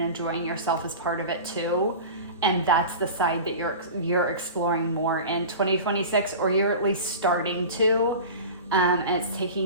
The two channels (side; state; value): both; inverted; correlation -0.33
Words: yourself is part of it too. And that's the side that you're exploring more in 2026, or you're at least starting to, and it's